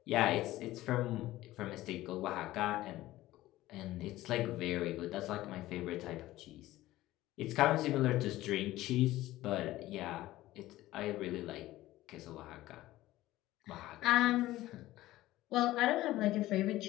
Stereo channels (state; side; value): quieter; right; 16.3 dB